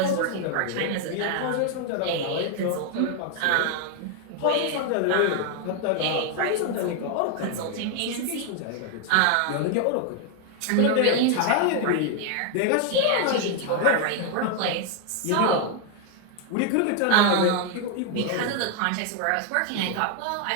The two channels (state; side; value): different; both; correlation 0.00